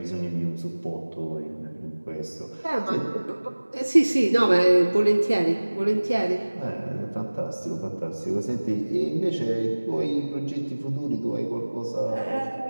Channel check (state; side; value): inverted; both; correlation -1.00